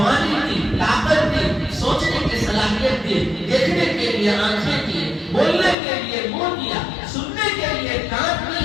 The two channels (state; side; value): drops out; right; at 5.8 s